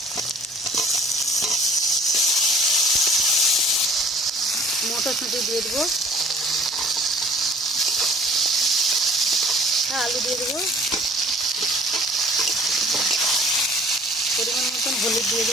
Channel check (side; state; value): both; normal; correlation 0.51